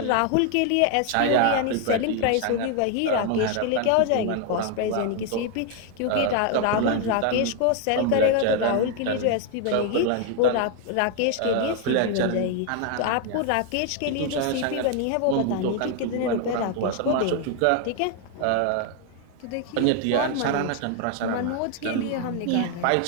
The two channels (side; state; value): both; different; correlation 0.01